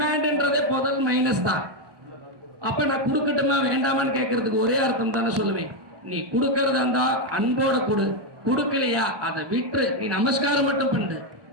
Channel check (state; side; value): late; left; 1.2 ms